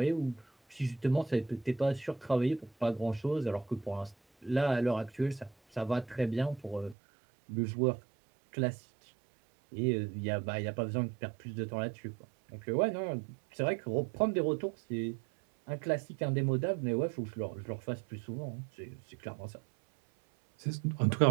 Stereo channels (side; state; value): left; drops out; at 7.0 s